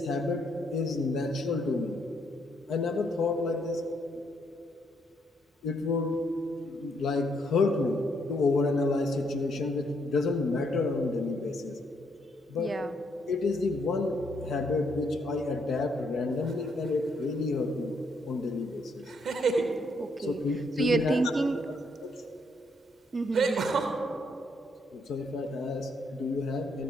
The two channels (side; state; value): both; normal; correlation 0.73